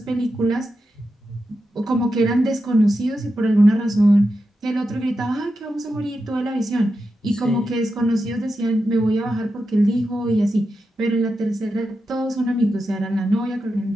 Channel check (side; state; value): both; normal; correlation 0.89